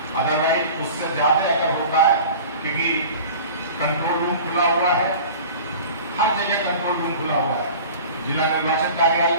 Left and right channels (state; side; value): inverted; both; correlation -0.40